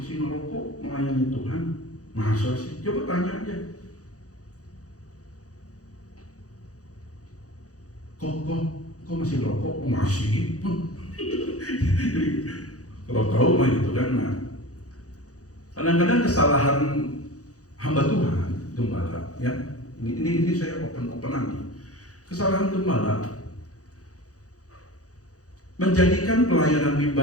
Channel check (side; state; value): right; late; 0.66 ms